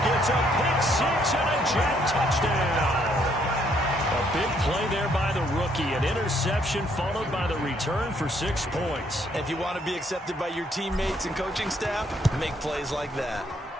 It's a pick six and a Jet touchdown. A big play there by the rookie. rookie. An interception followed by the return for 6 points. If you want to be accepted by your teammates and coaching staff, make plays like that.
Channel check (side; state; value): both; normal; correlation 0.69